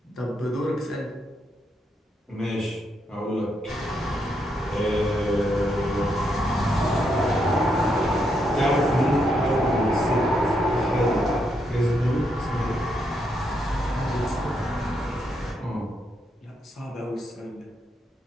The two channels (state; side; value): normal; both; correlation 0.79